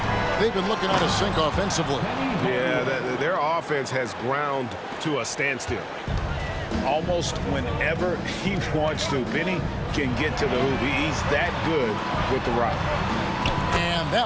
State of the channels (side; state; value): both; identical; correlation 1.00